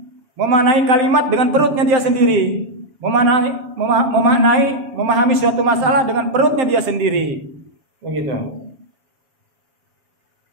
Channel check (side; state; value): left; late; 7.2 ms